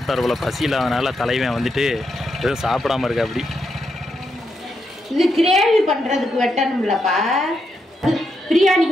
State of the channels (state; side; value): normal; both; correlation 0.82